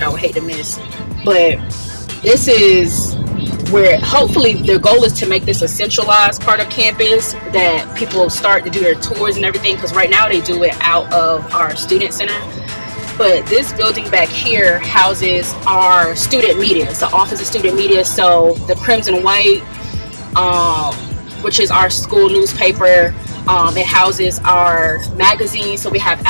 I would hate to miss. But this is where hopefully their goal is to make this a centralized part of campus that people start to do their tours and everything, because right now they do it out of our student center. But this building back here houses our student media. It's the Office of Student Media. So the Crimson White, which is our school newspaper, it houses our magazine. So we have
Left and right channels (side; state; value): both; inverted; correlation -1.00